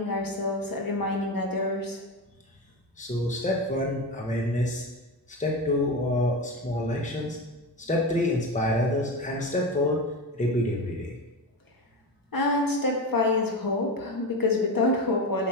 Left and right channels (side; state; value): both; normal; correlation 0.21